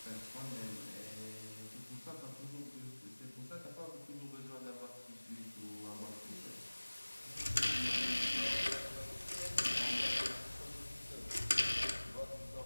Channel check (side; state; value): both; inverted; correlation -1.00